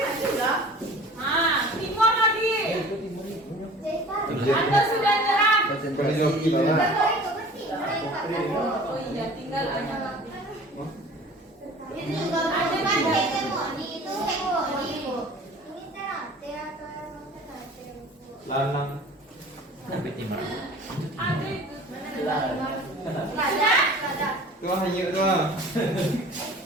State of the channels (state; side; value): normal; both; correlation 0.44